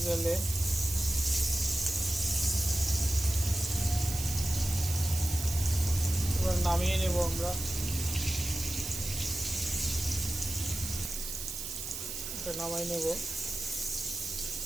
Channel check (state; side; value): noise; right; hiss, 6 dB below the sound